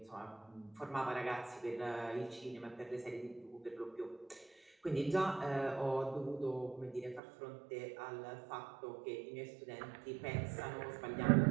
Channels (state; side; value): drops out; left; at 7.2 s